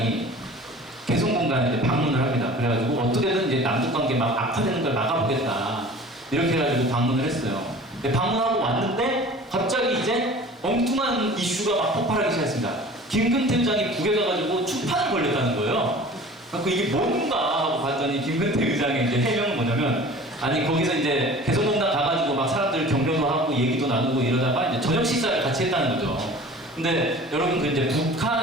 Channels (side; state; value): both; normal; correlation 0.43